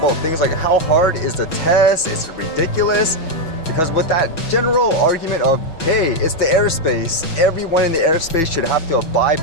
things like how hard is the test, is it ridiculous? Because with that general argument of, hey, it's the airspace, everyone in the airspace should have to abide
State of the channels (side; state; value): right; late; 6.1 ms